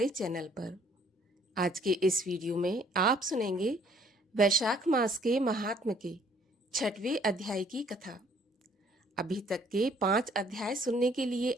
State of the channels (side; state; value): both; normal; correlation 0.60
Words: चैनल पर। आज के इस वीडियो में आप सुनेंगे वैशाख मास के महात्म के 6वें अध्याय की कथा। अभी तक के 5 अध्याय सुनने के लिए